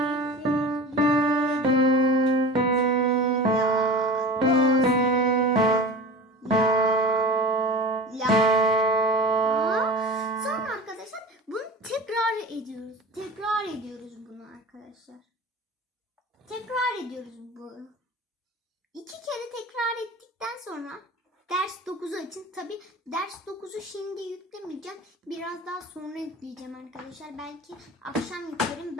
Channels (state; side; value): normal; both; correlation 0.35